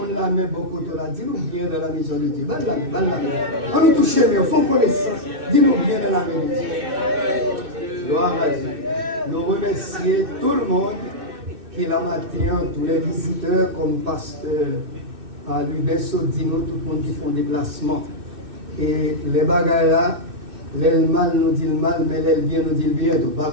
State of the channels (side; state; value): left; late; 2.6 ms